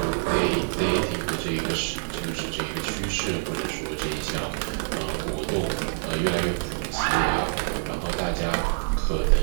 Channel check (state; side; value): silent; left; digital silence